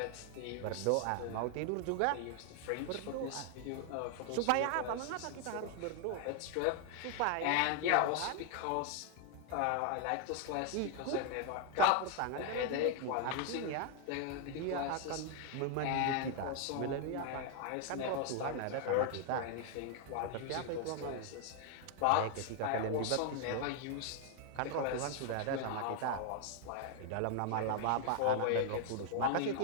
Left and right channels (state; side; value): different; both; correlation 0.00